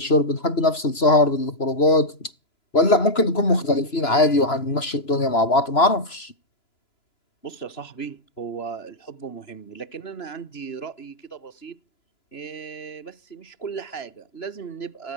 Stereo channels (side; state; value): right; late; 2.9 ms